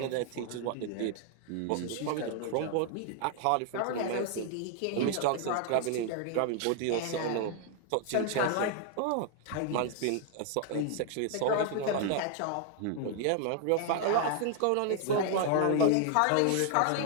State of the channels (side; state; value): both; different; correlation 0.00